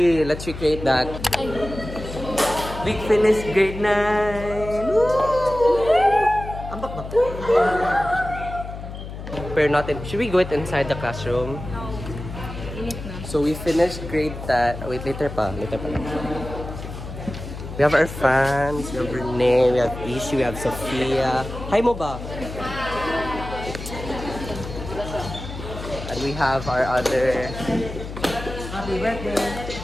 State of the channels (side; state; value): left; noise; hum, 10 dB below the sound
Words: let's recreate that. We finished grade 9. Ambak ba? Pero natin, should we go it inside the classroom? No. Init na. So we finished grade 10. Wait, later pa. We have our fans, we have Renee, we have Ishi, we have Sophia. Hi mo ba? And we have our other Happy birthday.